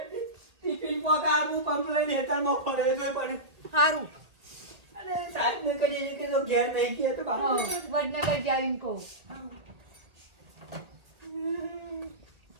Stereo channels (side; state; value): left; late; 1.8 ms